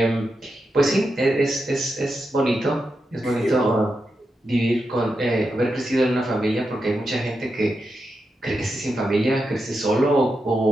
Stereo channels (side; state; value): both; normal; correlation 0.87